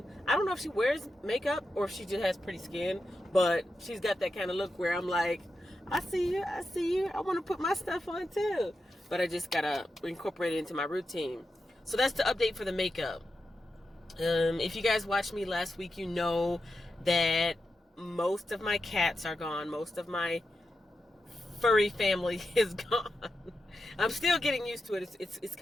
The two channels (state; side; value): normal; both; correlation 0.89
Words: I don't know if she wears makeup or if she just has pretty skin, but she's got that kind of look where I'm like, I see you, I want to put my stuff on too, but I just gotta incorporate it into my routine. So that's the update for the makeup. If you guys watched me last week, you know that most of my cats are gone. Most of my furry family is gone. I'm still getting used to it. It's